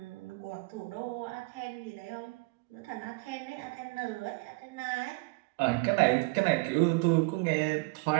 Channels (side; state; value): left; quieter; 26.4 dB